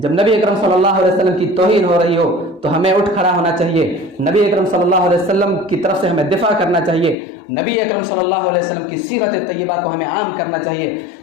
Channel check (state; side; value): drops out; right; at 7.2 s